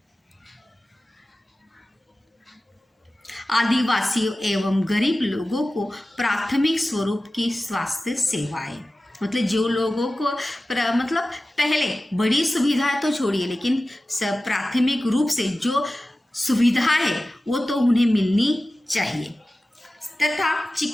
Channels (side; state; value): both; normal; correlation 0.95